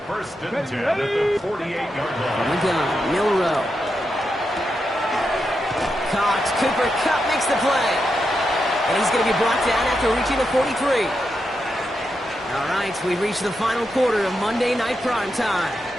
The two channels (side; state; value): both; normal; correlation 0.86